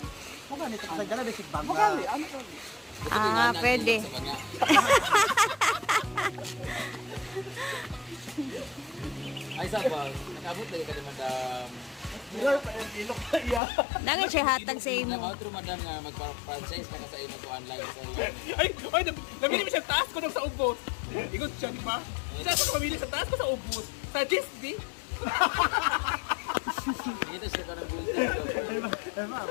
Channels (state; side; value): drops out; right; at 13.6 s